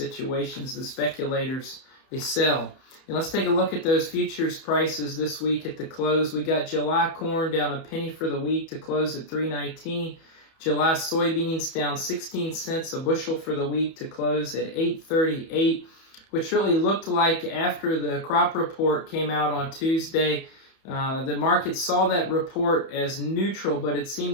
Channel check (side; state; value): right; late; 31 ms